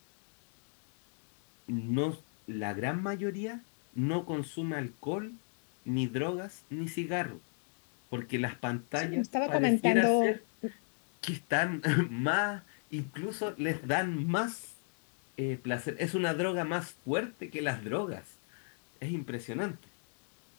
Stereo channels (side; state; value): right; silent; 54 dB below the other